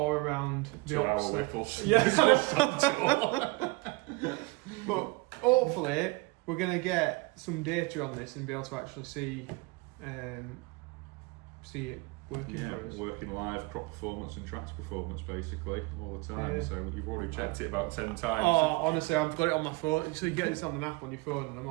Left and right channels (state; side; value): quieter; left; 24.9 dB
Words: around the 2 hour whipples. Yeah. But hopefully we're going to get some data on this and be able to actually see it working for us. Working live, crop performance and tractor performance basically all the time. So you've already checked it about 10 times. Oh, honestly, I've got it on my phone. So you get this on the app on your phone, and I'm